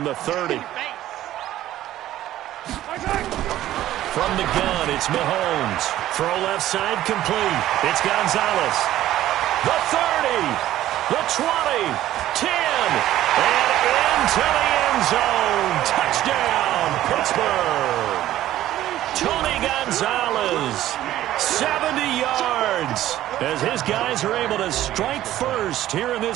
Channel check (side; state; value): left; quieter; 13.6 dB